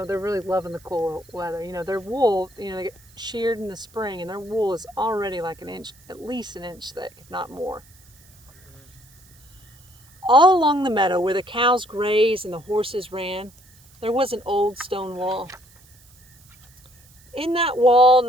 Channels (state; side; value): noise; right; hiss, 27 dB below the sound